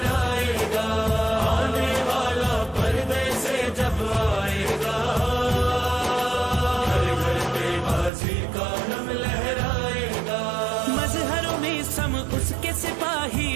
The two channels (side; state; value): left; drops out; at 8.1 s